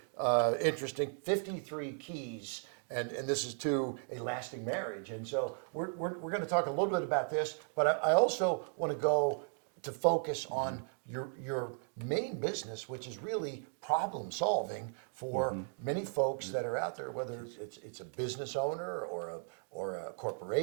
interesting, 53 Keys, and this is to a lasting marriage. And so we're going to talk a little bit about this, but I also want to go to focus on your main business, which is really problem solving for many folks that are out there, whether it's a business owner or a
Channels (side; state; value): left; silent; 54 dB below the other